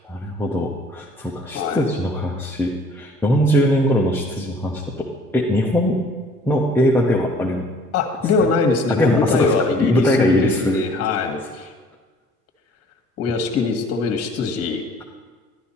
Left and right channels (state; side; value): normal; both; correlation 0.54